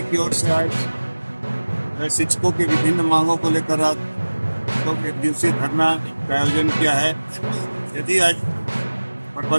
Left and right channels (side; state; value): both; inverted; correlation -1.00